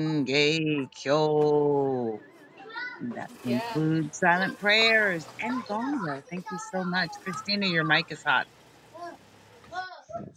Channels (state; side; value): identical; both; correlation 1.00